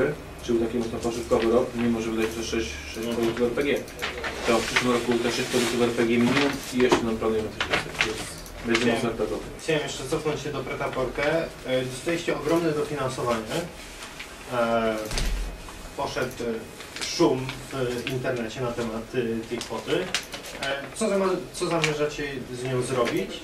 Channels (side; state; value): both; identical; correlation 1.00